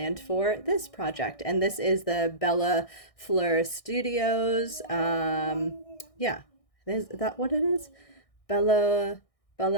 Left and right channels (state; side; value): late; right; 1.6 ms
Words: for this project. And this is the Bella Fleur Studios. Yeah, is that what it is? Bella